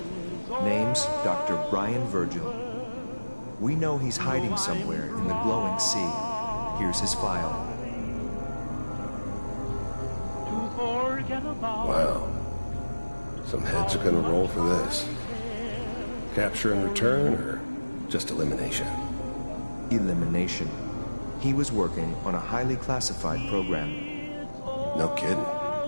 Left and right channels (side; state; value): both; inverted; correlation -1.00